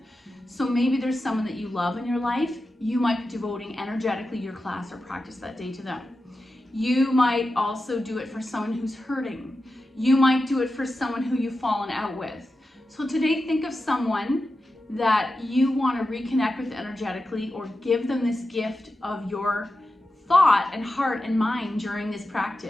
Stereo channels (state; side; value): normal; both; correlation 0.91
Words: So maybe there's someone that you love in your life. You might be devoting energetically your class or practice that day to them. You might also do it for someone who's hurting. You might do it for someone who you've fallen out with. So today, think of someone that you want to reconnect with energetically or give them this gift of your thought and heart and mind during this